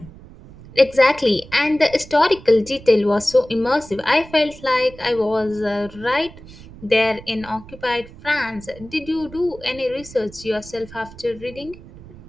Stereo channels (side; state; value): right; noise; rumble, 19 dB below the sound